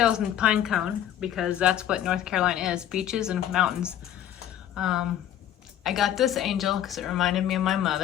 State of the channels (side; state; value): right; quieter; 11.1 dB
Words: and pine cone, because that's what North Carolina is, beaches and mountains. I got this angel because it reminded me of my